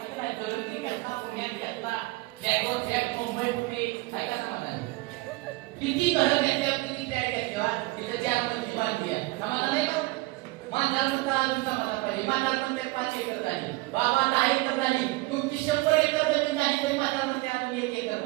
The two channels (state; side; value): quieter; left; 21.8 dB